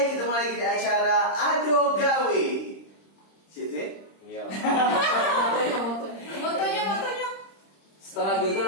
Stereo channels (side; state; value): right; late; 26 ms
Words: ketemu lagi di acara Ado Gawe. Situ? Iya. Motonya. Setelah judul